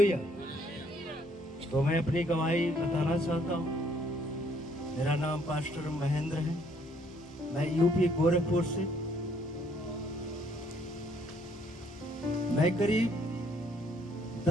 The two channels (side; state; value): both; normal; correlation 0.66